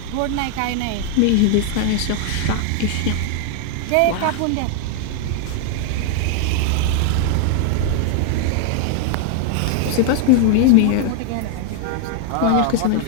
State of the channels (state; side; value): different; both; correlation 0.00